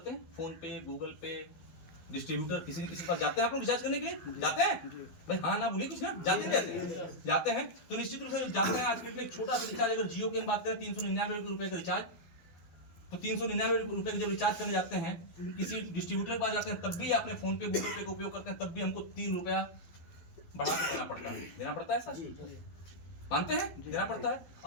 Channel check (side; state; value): right; late; 12 ms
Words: हैं, फोन पे, गूगल पे, डिस्ट्रीब्यूटर, किसी न किसी के पास जाते हैं। आप लोग रिचार्ज करने के लिए जाते हैं भाई, हाँ ना बोलिए कुछ ना, जाते हैं जाते हैं तो निश्चित रूप से जाते हैं। आज के डेट में एक छोटा सा रिचार्ज, अगर जियो की हम बात करें ₹399 का रिचार्ज, तो ₹399 जब रिचार्ज करने जाते हैं किसी डिस्ट्रीब्यूटर के पास जाते हैं, तब भी अपने फोन पे, गूगल पे का उपयोग करते हैं, तब भी हमको ₹3 बढ़ा के देना पड़ता है सर, मानते हैं, देना पड़ता है।